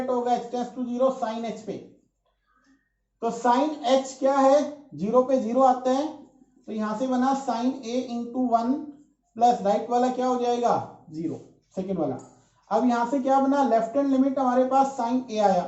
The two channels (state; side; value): identical; both; correlation 1.00